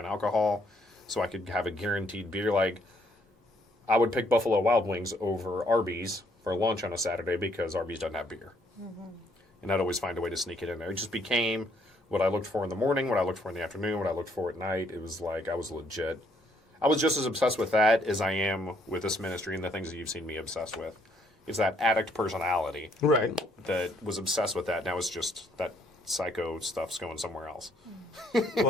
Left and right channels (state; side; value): normal; both; correlation 0.68